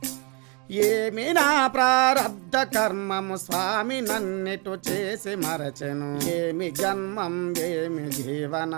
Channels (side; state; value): left; quieter; 32.6 dB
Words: ఏమి నా ప్రారబ్ధ కర్మము స్వామి నన్నిటు చేసి మరచెను ఏమి జన్మం ఏమి